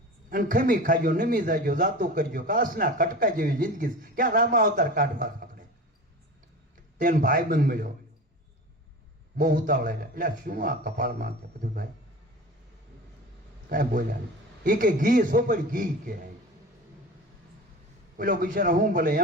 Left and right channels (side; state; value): both; normal; correlation 0.34